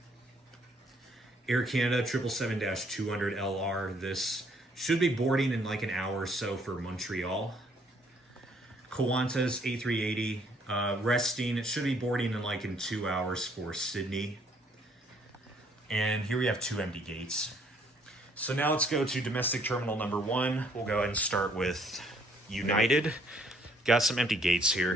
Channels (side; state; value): both; normal; correlation 0.65